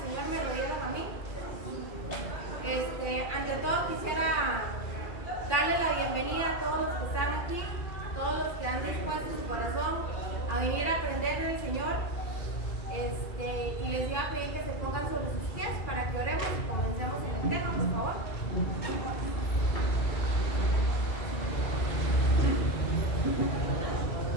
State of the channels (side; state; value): right; late; 2.3 ms